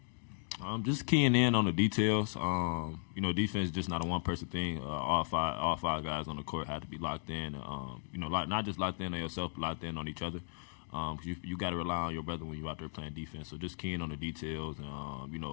Just keying in on the details. Defense is just not a one-person thing. All five guys on the court have to be locked in. Not just locked in on yourself, but locked in on each other. You got to rely on your brother when you're out there playing defense. So just keying on the details and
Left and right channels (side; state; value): right; silent; digital silence